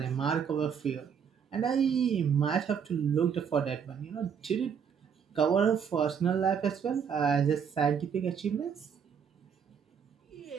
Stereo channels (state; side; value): quieter; left; 7.2 dB